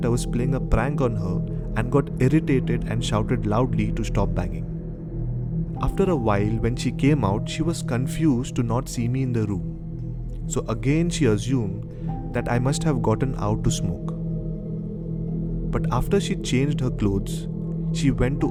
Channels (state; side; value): identical; both; correlation 1.00